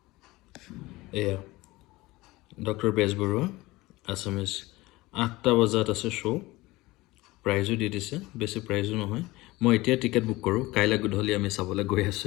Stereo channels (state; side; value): quieter; right; 20.1 dB